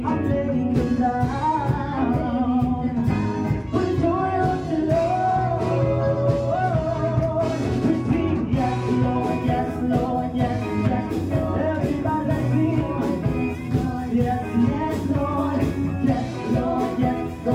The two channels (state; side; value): identical; both; correlation 1.00